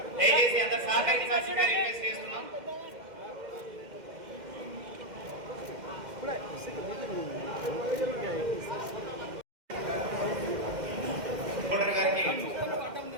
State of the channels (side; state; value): left; late; 2.1 ms